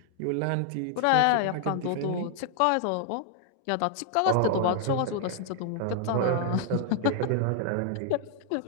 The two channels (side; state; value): both; different; correlation 0.00